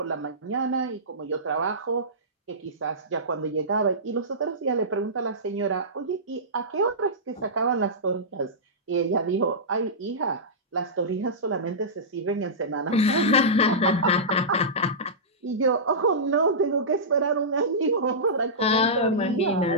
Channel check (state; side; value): normal; both; correlation -0.17